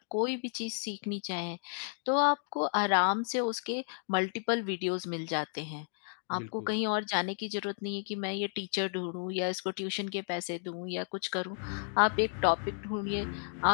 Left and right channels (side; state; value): right; silent; 56 dB below the other